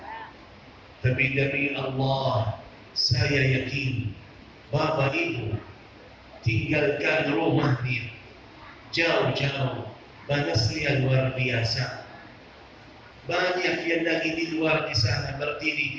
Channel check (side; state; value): both; identical; correlation 1.00